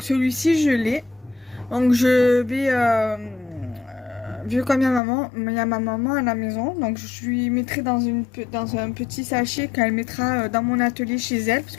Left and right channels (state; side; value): drops out; right; at 5.0 s